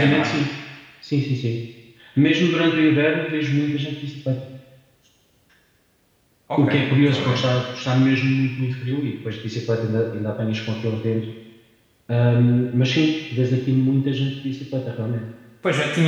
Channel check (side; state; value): both; identical; correlation 1.00